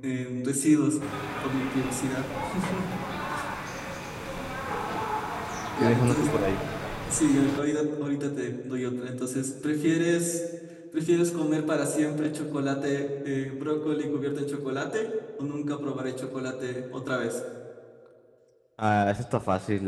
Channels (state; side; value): identical; both; correlation 1.00